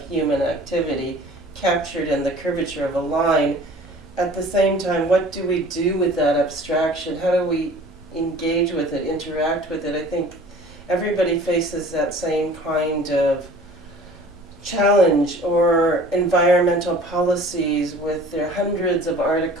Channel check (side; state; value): both; normal; correlation 0.47